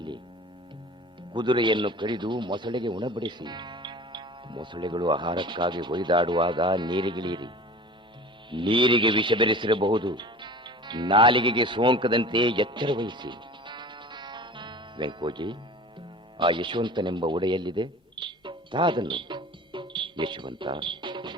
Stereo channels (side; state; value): both; normal; correlation 0.39